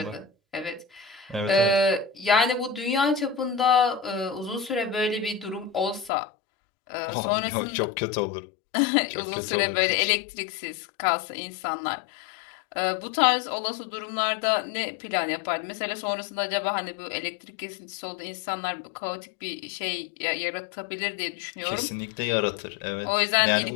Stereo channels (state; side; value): drops out; right; at 6.1 s